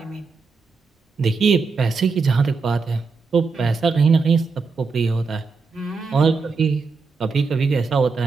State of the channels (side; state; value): left; quieter; 4.6 dB